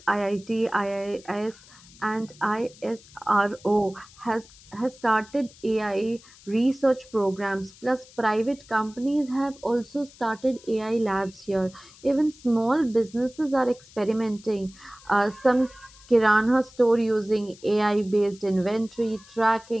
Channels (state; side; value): noise; left; hiss, 23 dB below the sound